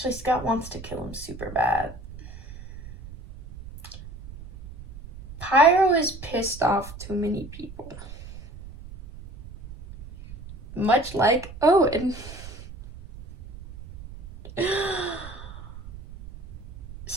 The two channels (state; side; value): noise; right; rumble, 15 dB below the sound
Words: Scott wants to kill him super bad. Pyro is pissed off too many people. Much like Owen.